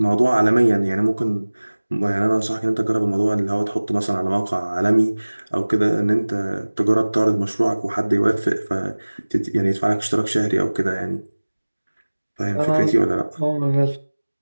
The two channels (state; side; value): inverted; both; correlation -1.00